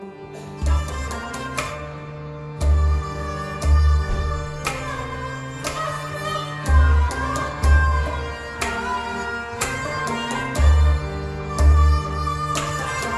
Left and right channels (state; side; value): identical; both; correlation 1.00